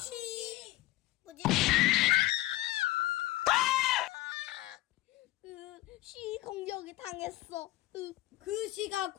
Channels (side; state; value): right; quieter; 17.4 dB